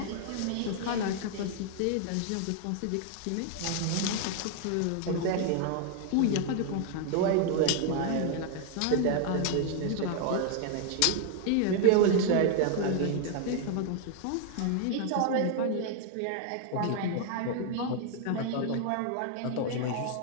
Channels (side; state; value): both; different; correlation 0.00